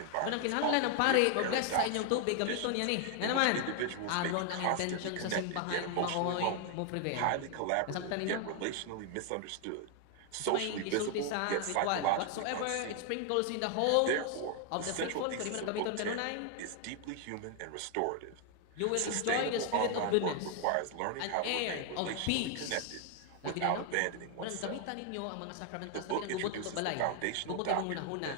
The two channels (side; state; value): both; different; correlation 0.00